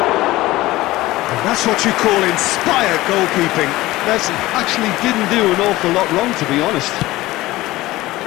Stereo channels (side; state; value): right; quieter; 18.0 dB